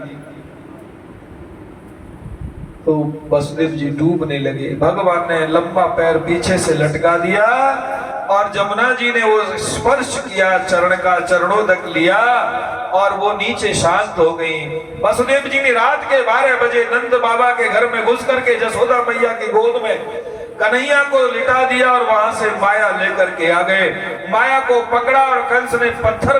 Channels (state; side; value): identical; both; correlation 1.00